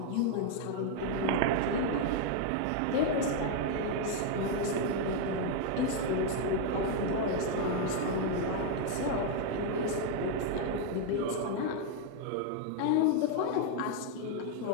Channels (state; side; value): different; both; correlation 0.01